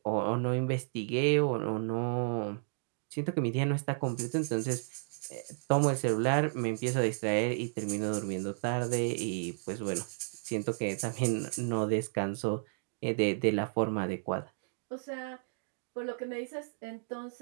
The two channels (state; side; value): silent; left; digital silence